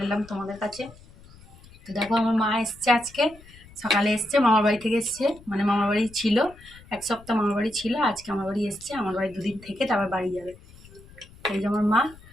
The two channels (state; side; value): noise; left; rumble, 23 dB below the sound